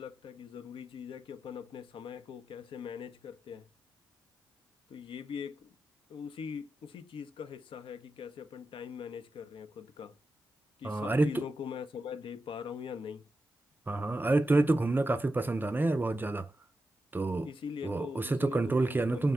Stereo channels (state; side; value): normal; both; correlation 0.90